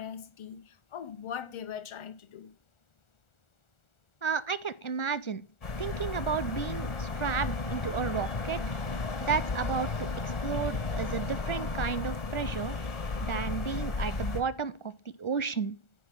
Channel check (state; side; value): late; right; 1.4 ms